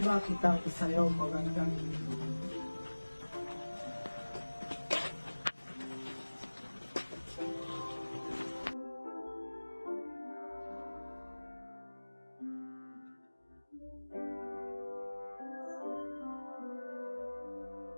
kitang isayaw magandang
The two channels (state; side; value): inverted; both; correlation -1.00